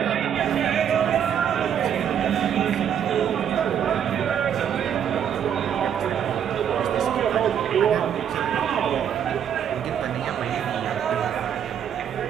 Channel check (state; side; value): quieter; left; 8.8 dB